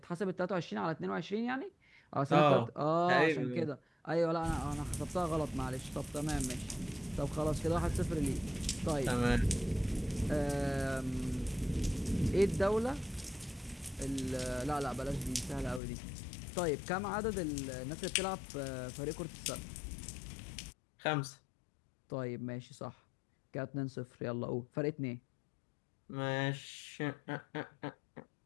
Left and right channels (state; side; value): drops out; right; at 15.8 s